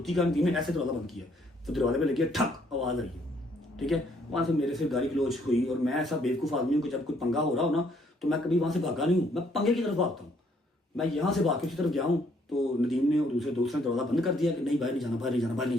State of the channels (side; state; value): both; normal; correlation 0.67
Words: का, नदीम ने ऐसे दरवाजा बंद किया, तो दरवाजे पे लगी ठक आवाज़ आई है, ठीक है। वहाँ से मेरे से गाली गलौज हुई और मैं ऐसा बेवकूफ़ आदमी हूँ कि जब कोई पंगा हो रहा हो ना तो मैं कभी वहाँ से भागा नहीं हूँ, मैं पंगे की तरफ भागता हूँ। मैं यहाँ से भाग के उसी तरफ गया हूँ तो नदीम ने और दूसरे दोस्त ने दरवाज़ा बंद कर दिया कि नहीं बाहर नहीं जाना, बाहर नहीं जाना, बाहर नहीं